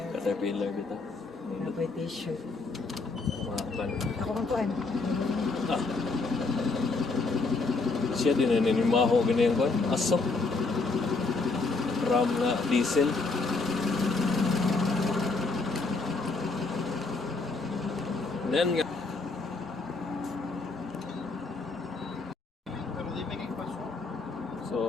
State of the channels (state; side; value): quieter; right; 3.8 dB